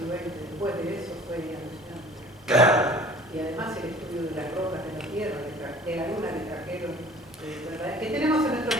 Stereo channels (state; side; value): normal; both; correlation 0.47